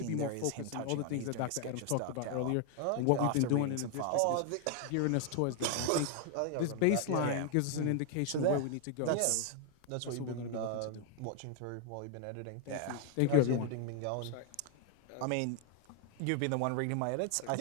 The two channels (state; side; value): different; both; correlation 0.01